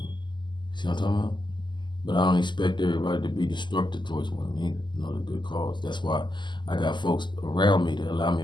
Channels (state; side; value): late; right; 0.22 ms